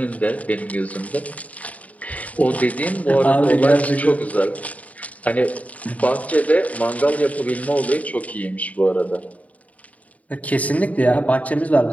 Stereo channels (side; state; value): right; late; 0.070 ms